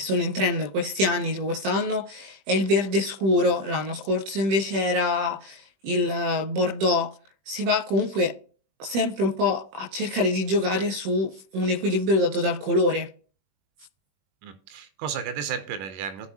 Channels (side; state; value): left; late; 21 ms